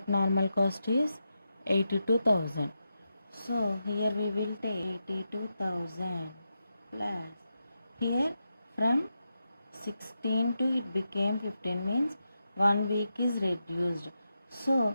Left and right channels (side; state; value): both; inverted; correlation -0.87